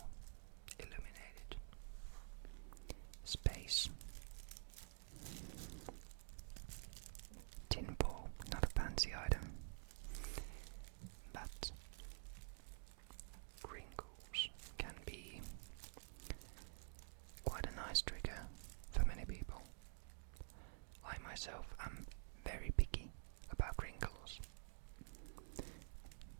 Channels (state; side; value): silent; left; digital silence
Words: illuminated space. Tin foil, not a fancy item, but crinkles can be quite a nice trigger for many people. I myself am very picky about crinkles.